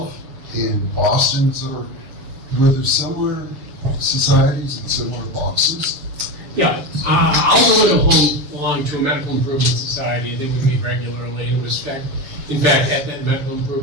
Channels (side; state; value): left; late; 7.0 ms